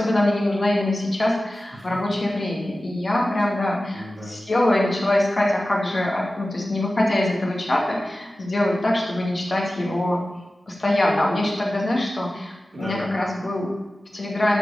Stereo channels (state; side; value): normal; both; correlation 0.95